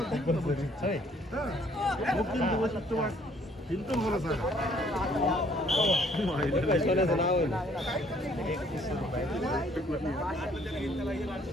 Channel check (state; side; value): normal; both; correlation 0.62